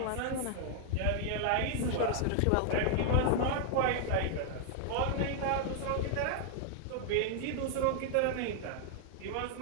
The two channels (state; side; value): different; both; correlation 0.00